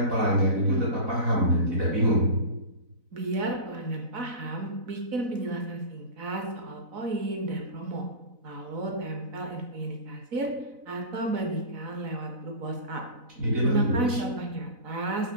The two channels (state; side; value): late; left; 4.0 ms